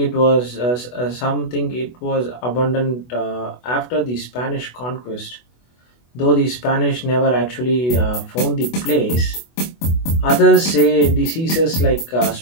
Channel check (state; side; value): late; right; 24 ms